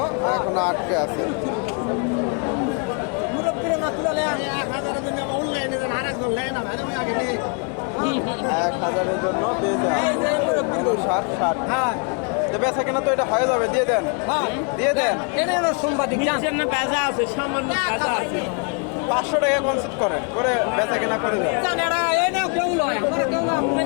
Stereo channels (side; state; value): right; quieter; 37.7 dB